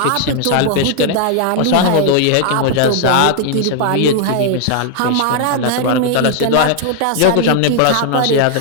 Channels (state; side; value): different; both; correlation 0.00